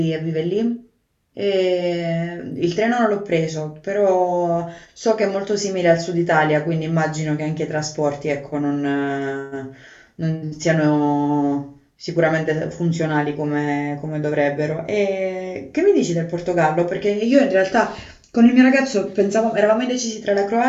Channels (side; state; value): both; identical; correlation 1.00